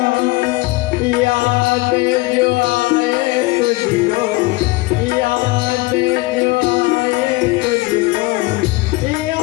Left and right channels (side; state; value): right; quieter; 21.8 dB